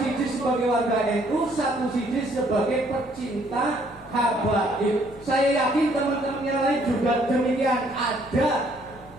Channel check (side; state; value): both; normal; correlation 0.64